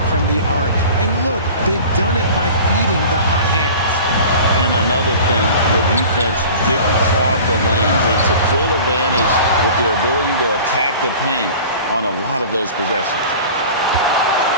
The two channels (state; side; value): inverted; both; correlation -0.41